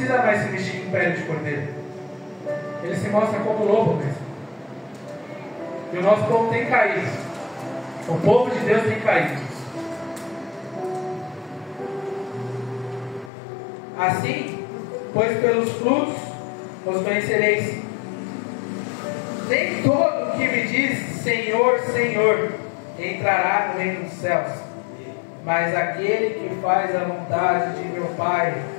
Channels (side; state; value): right; drops out; at 13.3 s